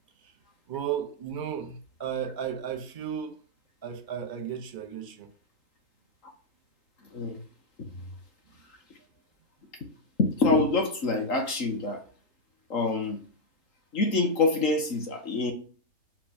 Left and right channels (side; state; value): right; late; 3.8 ms